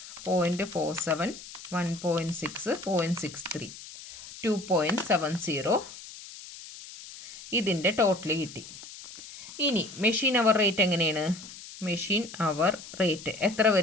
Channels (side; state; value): left; noise; hiss, 15 dB below the sound